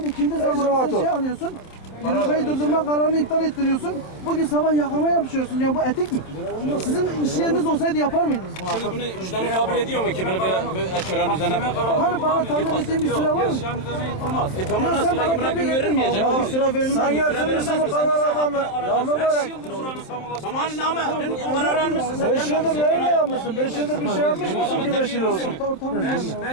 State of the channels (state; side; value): late; right; 27 ms